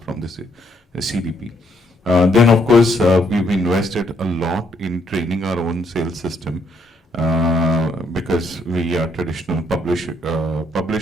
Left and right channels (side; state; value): both; normal; correlation 0.72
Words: CDP. Then, of course, we've invested a lot in training our own sales system, because we are traditional